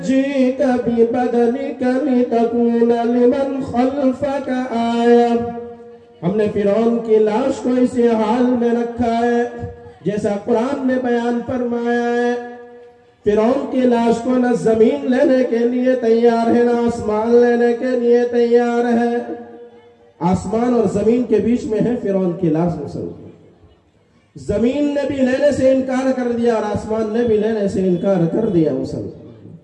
بِبَدَنِكَ لِتَكُونَ لِمَنْ خَلْفَكَ آیَةً۔ ہم نے فرعون کی لاش کو اسی حال میں رکھا ہے جیسا قرآن نے بیان فرمایا ہے۔ فرعون کی لاش کو نہ زمین لینے کے لیے تیار ہے، نہ آسمان لینے کے لیے تیار ہے۔ آسمان اور زمین کے بیچ میں ہے فرعون کی لاش مسلمان۔ زمین نے بھی لینے سے انکار کر دیا اور آسمان نے بھی لینے سے انکار کر دیا مسلمان۔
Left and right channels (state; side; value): identical; both; correlation 1.00